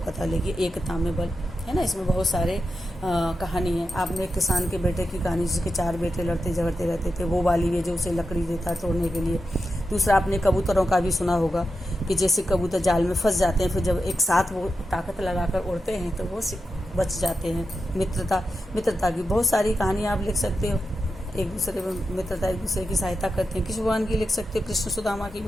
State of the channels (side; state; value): both; normal; correlation 0.89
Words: कथा लिखिए। एकता में बल है ना, इसमें बहुत सारे कहानी है। आपने एक किसान के बेटे की कहानी, जिसके 4 बेटे लड़ते झगड़ते रहते थे, वो वाली है जो उसे लकड़ी देता है तोड़ने के लिए। दूसरा आपने कबूतरों का भी सुना होगा कि जैसे कबूतर जाल में फंस जाते हैं, फिर जब एक साथ वो ताकत लगाकर उड़ते हैं तो वो बच जाते हैं। मित्रता की बहुत सारी कहानियाँ आप लिख सकते हो। एक दूसरे में मित्रता, एक दूसरे की सहायता करते हैं। कृष्ण भगवान की लिख सकते हो, कृष्ण सुदामा की